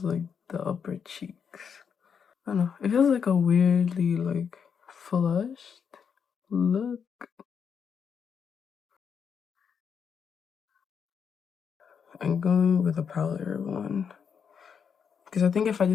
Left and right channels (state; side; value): quieter; right; 6.9 dB